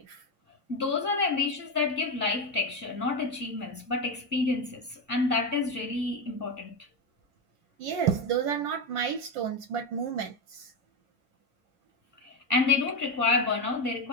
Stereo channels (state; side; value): late; left; 2.3 ms